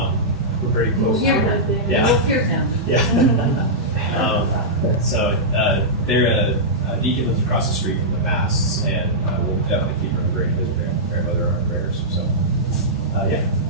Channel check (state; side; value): normal; both; correlation -0.12